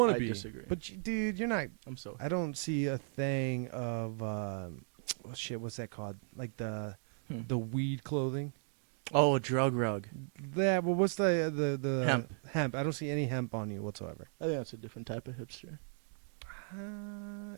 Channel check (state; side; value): silent; left; 54 dB below the other